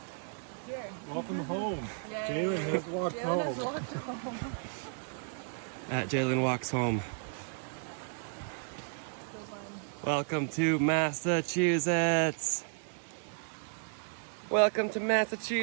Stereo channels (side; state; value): left; silent; digital silence